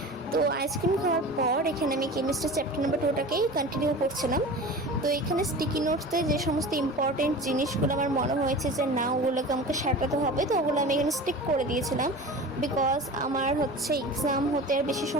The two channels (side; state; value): both; normal; correlation 0.35